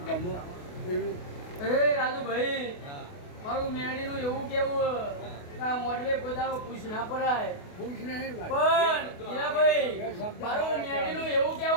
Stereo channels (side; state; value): right; late; 28 ms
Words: ગમો એવી એ રાજુભાઈ મારું મેળીનું એવું કેવું મોડવે કોદારો પૂછ ના પડાય પૂછ નહીં પણ હીરાભાઈ મારું મેળીનું એવું